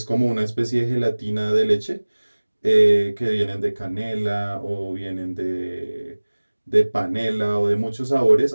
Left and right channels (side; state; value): both; inverted; correlation -1.00